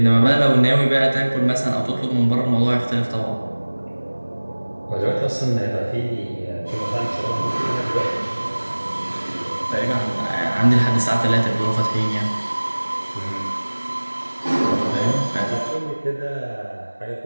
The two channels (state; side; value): inverted; both; correlation -1.00